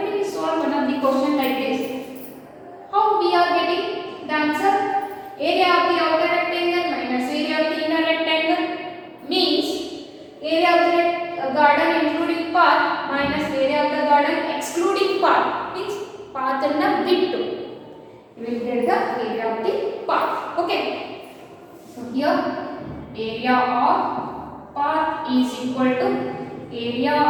we solved one of the question like this. How we are getting the answer? Area of the outer rectangle minus area of the inner rectangle means area of the garden including park minus area of the garden excluding park, means path and the bittu. You will get the area of the park. Okay. So here area of park is equal to area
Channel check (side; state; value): both; identical; correlation 1.00